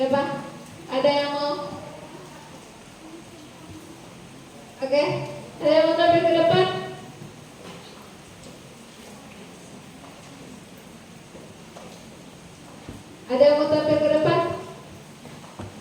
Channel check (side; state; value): both; identical; correlation 1.00